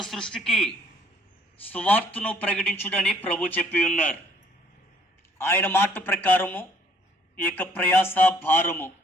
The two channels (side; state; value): both; normal; correlation 0.62